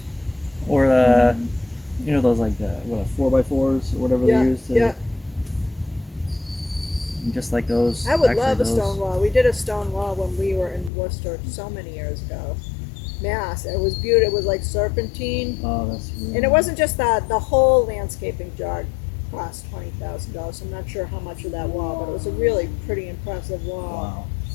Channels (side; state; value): right; drops out; at 10.9 s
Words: or you know those like the 4x4s or whatever Yeah, they use to, yeah. just like those. I would actually love a those, stone wall. We did a stone wall when we were in Worcester so many years ago. Mass. It was beautiful. It was like serpentine. Oh, that's really And it wasn't just that, the whole landscaping job cost $20,000. I'm not sure how much of that wall, but it was a really pretty impressive wall. Wow.